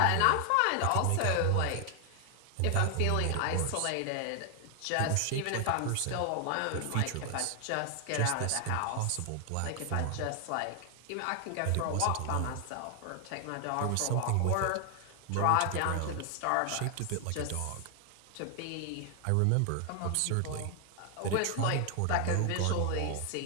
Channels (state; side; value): different; both; correlation 0.00